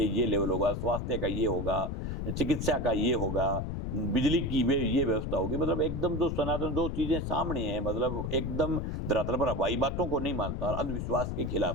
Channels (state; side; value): noise; left; rumble, 3 dB below the sound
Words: ये लेवल होगा, स्वास्थ्य का ये होगा, चिकित्सा का ये होगा, बिजली की ये व्यवस्था होगी। मतलब एकदम जो सनातन जो चीजें सामने हैं, मतलब एकदम धरातल पर हवाई बातों को नहीं मानता, अंधविश्वास के